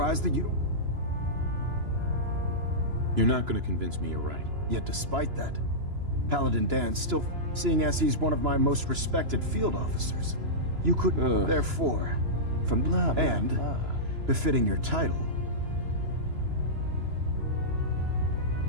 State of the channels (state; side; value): late; left; 2.9 ms